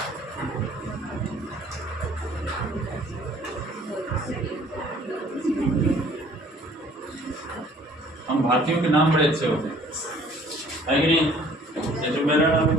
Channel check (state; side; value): normal; both; correlation 0.55